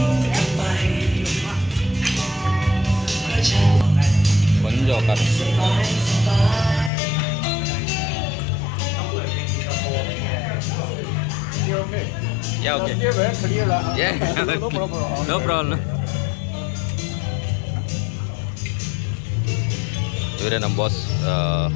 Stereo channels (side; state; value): right; drops out; at 6.9 s